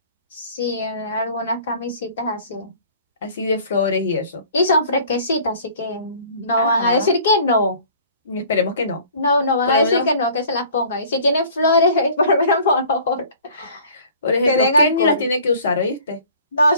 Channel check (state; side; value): inverted; both; correlation -0.51